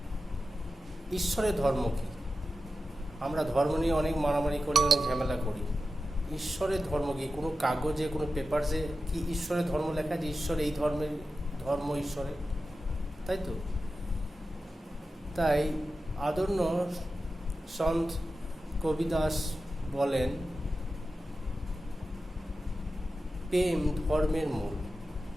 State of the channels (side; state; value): both; normal; correlation 0.92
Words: ঈশ্বরের ধর্ম কি? আমরা ধর্ম নিয়ে অনেক মারামারি করি, অনেক ঝামেলা করি। ঈশ্বরের ধর্ম কি? কোনো কাগজে, কোনো পেপারসে কি ঈশ্বরের ধর্ম লেখা যে ঈশ্বর এই ধর্মের ধর্ম ঈশ্বরের? তাই তো। তাই আদর্য সন্ত কবিদাস বলেন, প্রেম ধর্মের মূল।